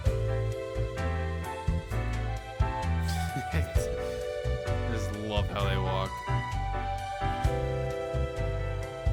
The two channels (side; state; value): both; identical; correlation 1.00